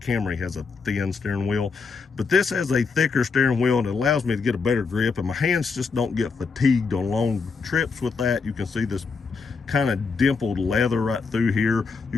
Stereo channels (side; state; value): right; quieter; 4.8 dB